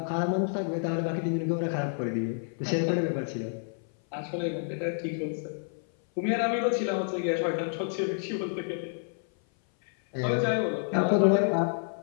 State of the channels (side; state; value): right; silent; 57 dB below the other